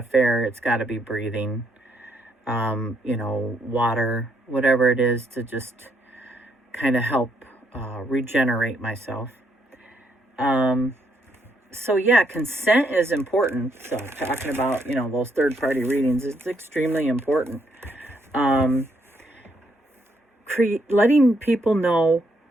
fair, it's got to be breathing. Water, whatever it is, to just kind of help regenerate myself. So yeah, consent is important. So talking about, those third-party readings, it's extremely important. Letting people know,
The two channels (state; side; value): normal; both; correlation 0.73